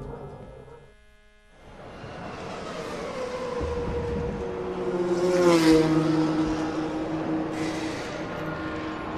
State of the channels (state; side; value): identical; both; correlation 1.00